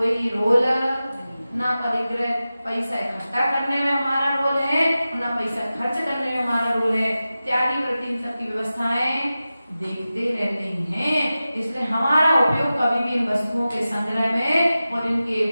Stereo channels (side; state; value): both; inverted; correlation -0.95